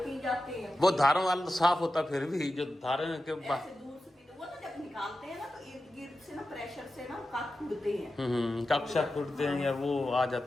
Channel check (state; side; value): normal; both; correlation 0.92